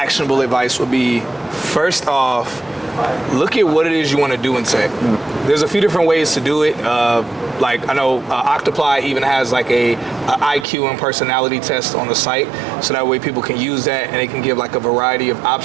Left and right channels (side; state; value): left; drops out; at 10.7 s